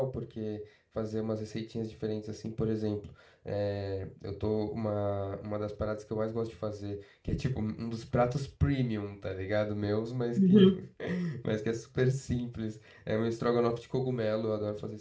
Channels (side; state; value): both; identical; correlation 1.00